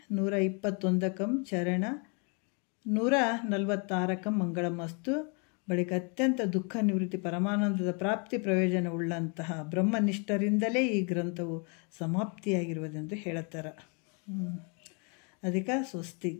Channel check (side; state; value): right; quieter; 35.5 dB